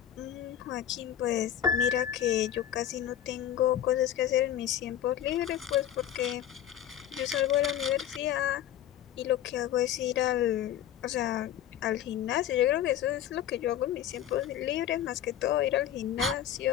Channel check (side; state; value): right; quieter; 10.8 dB